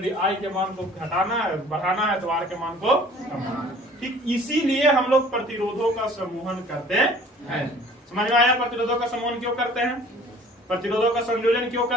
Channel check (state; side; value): normal; both; correlation 0.50